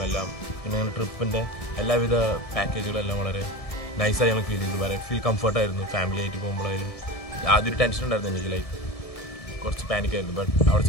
എല്ലാം, പിന്നെ ഞങ്ങളുടെ ട്രിപ്പിൻ്റെ എല്ലാവിധ പാക്കേജുകളെല്ലാം വളരെ നൈസായി ഞങ്ങൾ ഫീൽ ചെയ്തു. വളരെ ഫീൽ കംഫർട്ടായിരുന്നു. ഫാമിലി ആയിട്ട് പോകുമ്പോഴായാലും ആദ്യം ഒരു ടെൻഷൻ ഉണ്ടായിരുന്നു എനിക്ക്, ലൈക്ക് കുറച്ച് പാനിക്കായിരുന്നു. ബട്ട് അവിടെ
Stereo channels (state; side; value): late; right; 1.7 ms